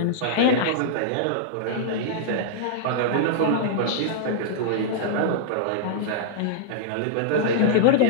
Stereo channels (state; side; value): different; both; correlation -0.02